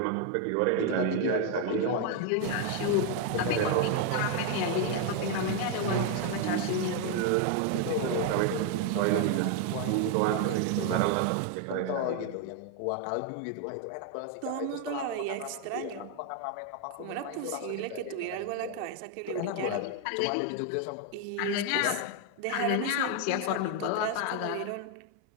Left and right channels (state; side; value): different; both; correlation 0.01